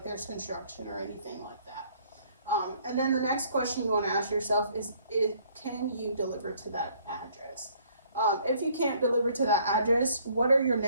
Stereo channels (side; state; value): both; inverted; correlation -0.61